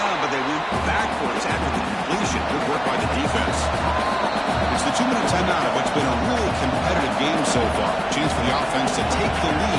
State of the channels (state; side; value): identical; both; correlation 1.00